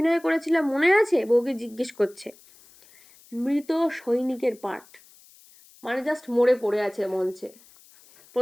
করেছিলাম মনে আছে? বউকে জিজ্ঞেস করছে। মৃত সৈনিকের পার্ট, মানে জাস্ট মরে পড়ে আছে মঞ্চে,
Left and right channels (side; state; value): left; noise; hiss, 26 dB below the sound